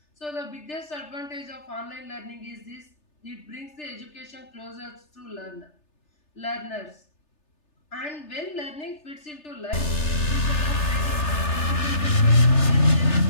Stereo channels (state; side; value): late; right; 3.3 ms